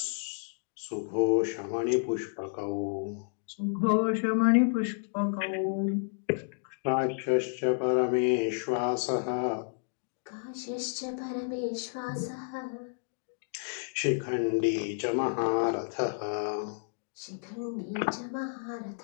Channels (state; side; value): silent; right; digital silence